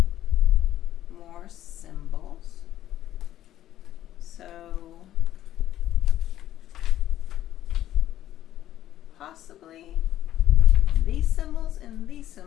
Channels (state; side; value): quieter; right; 12.6 dB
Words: more symbols. So possibly these symbols and these